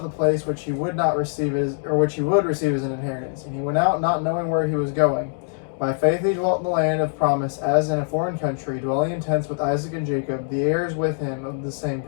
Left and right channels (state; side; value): silent; right; digital silence